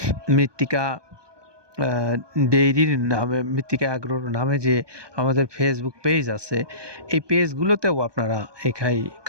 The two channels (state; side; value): late; left; 1.2 ms